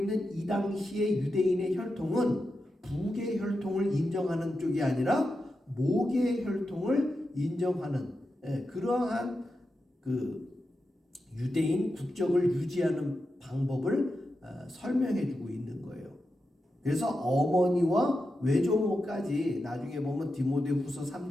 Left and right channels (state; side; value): normal; both; correlation 0.89